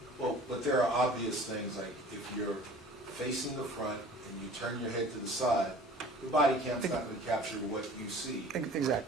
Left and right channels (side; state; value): both; normal; correlation 0.46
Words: but there are obvious things, like if you're facing the front and you turn your head to the side, the body cam's not going to capture what you see.